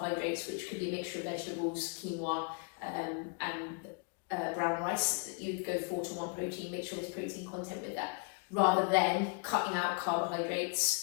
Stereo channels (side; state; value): right; quieter; 35.7 dB